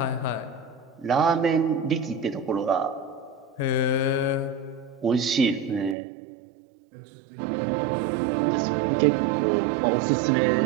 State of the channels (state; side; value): drops out; left; at 6.0 s